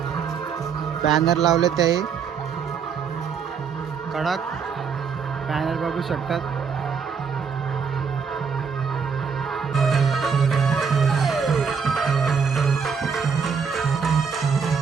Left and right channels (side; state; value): left; quieter; 6.2 dB